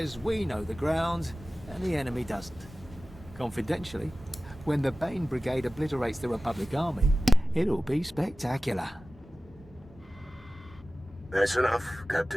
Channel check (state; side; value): normal; both; correlation 0.97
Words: we know the ground and the enemy doesn't. Confidentially, when the Bane Brigade obliterates the Republic Army, it'll be spectacular. That's enough,